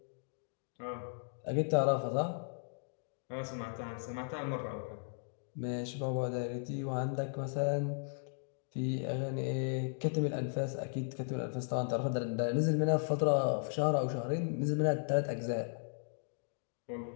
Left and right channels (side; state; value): right; silent; digital silence